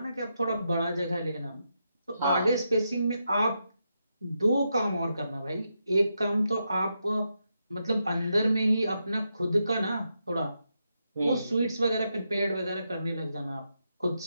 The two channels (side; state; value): both; inverted; correlation -0.84